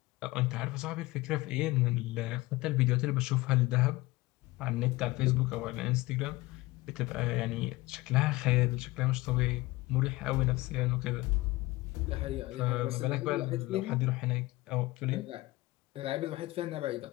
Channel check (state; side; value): quieter; right; 20.3 dB